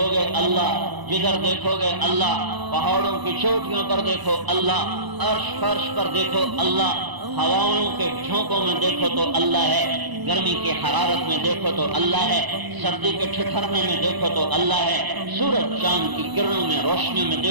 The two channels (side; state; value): left; late; 1.0 ms